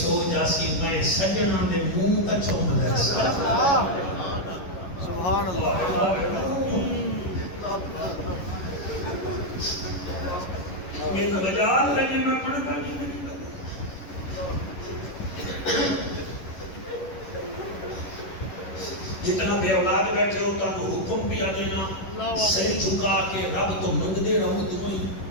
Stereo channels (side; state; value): right; late; 11 ms